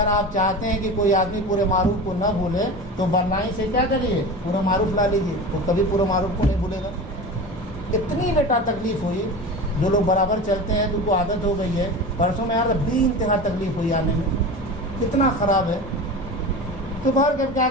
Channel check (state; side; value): normal; both; correlation 0.30